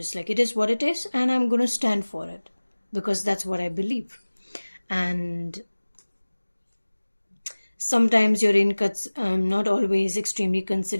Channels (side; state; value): both; inverted; correlation -1.00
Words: like, it is what it is, and I'm going to stand for it because that's what I believe. And sometimes you're not always extremely